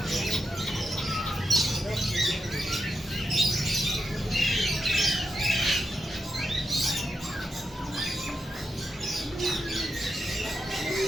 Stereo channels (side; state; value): both; normal; correlation 0.86